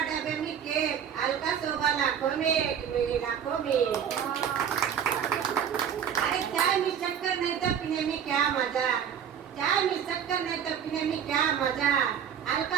में केक, अलका शोभा लाखों में, एक मेरी लाखों में. अरे चाय में शक्कर नहीं तो पीने में क्या मजा,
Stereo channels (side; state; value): left; quieter; 8.4 dB